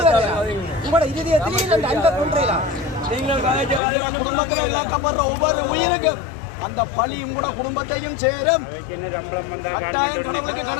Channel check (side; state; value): right; drops out; at 3.8 s